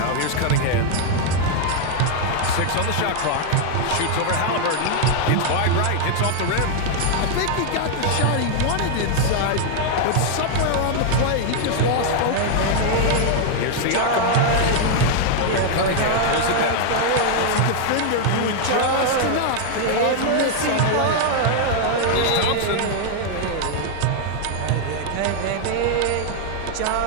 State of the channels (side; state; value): both; different; correlation 0.00